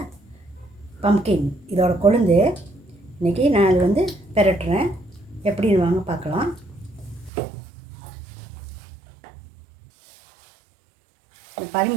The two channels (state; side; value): drops out; left; at 7.3 s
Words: பம்கின், இதோட கொழுந்து இன்றைக்கி நான் அது வந்து பெரட்டுறேன். எப்படின்னு வாங்க பார்க்கலாம்.